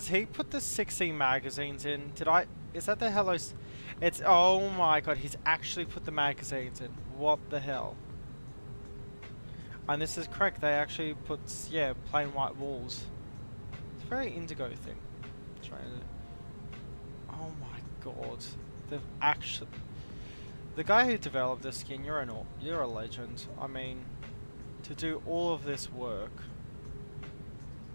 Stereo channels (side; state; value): both; inverted; correlation -1.00